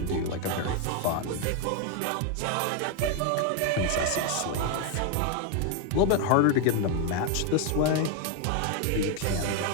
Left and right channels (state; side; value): different; both; correlation 0.01